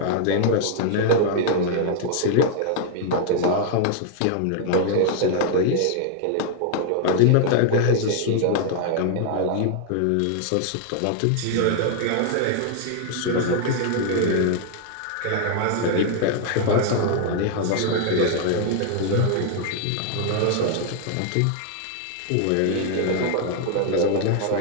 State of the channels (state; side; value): different; both; correlation 0.00